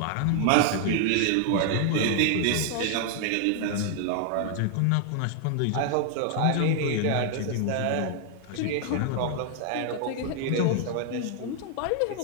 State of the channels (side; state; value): both; different; correlation 0.00